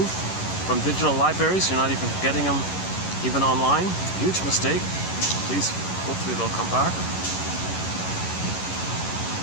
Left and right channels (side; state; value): right; late; 11 ms